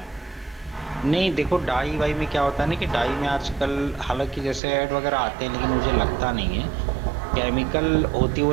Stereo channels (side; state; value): left; drops out; at 4.6 s